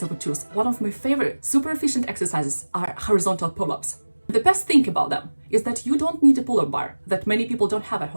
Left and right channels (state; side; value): inverted; both; correlation -1.00